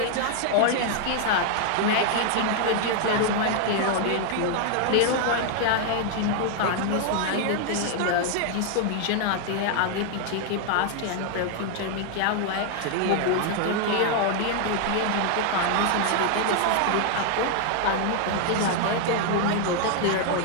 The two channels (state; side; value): different; both; correlation 0.00